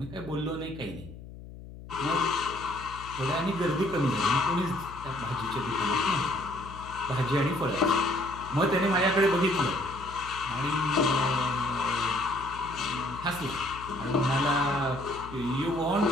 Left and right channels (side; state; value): left; noise; hum, 15 dB below the sound